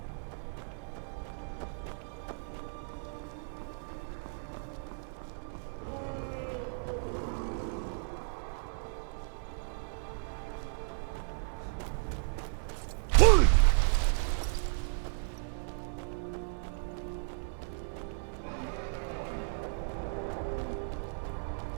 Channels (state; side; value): silent; left; 55 dB below the other